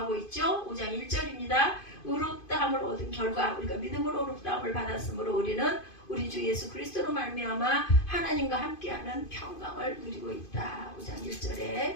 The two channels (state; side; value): late; right; 2.5 ms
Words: 있죠. 5장 1절입니다. 의롭다함을 얻은 결과, 우리가 믿음으로 의롭다함을 받았으므로 우리는 우리 주 예수 그리스도로 말미암아 하나님과 함께하는 평강을 누리고 있다. 5장